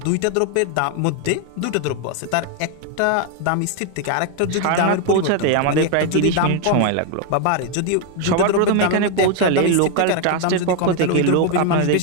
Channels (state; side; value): different; both; correlation 0.01